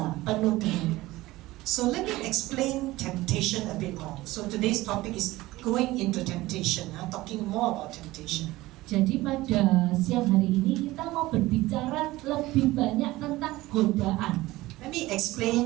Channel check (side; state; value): left; quieter; 18.4 dB